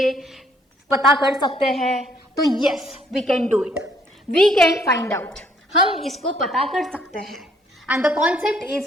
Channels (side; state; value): both; normal; correlation 0.66